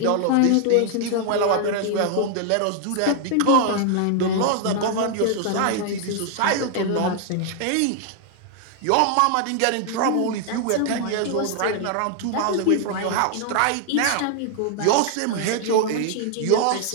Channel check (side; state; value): both; different; correlation 0.00